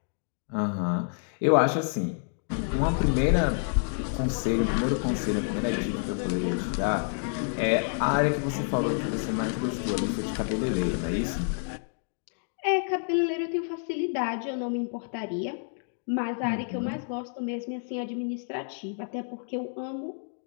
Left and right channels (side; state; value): right; silent; 58 dB below the other